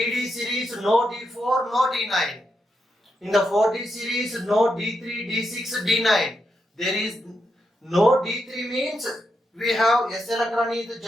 series, no D4, no D9. In the 4D series, no D3, D6, D9. There is no D3 means we have S electron is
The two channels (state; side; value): normal; both; correlation 0.83